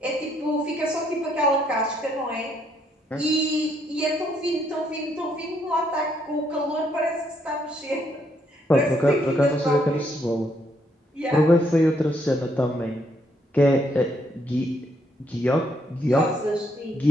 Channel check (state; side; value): normal; both; correlation 0.73